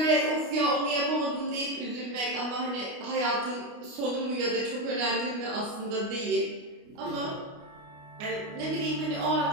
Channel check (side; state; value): left; late; 29 ms